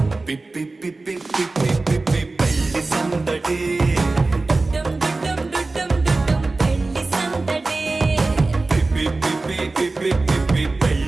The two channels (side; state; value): left; quieter; 3.4 dB